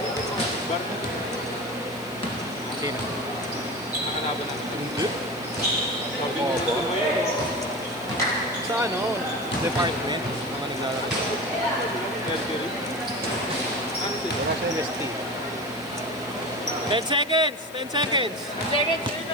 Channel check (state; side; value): noise; left; hiss, 20 dB below the sound